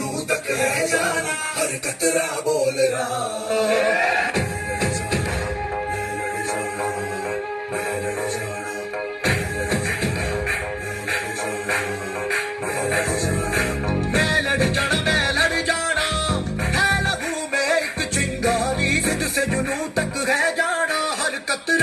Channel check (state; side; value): identical; both; correlation 1.00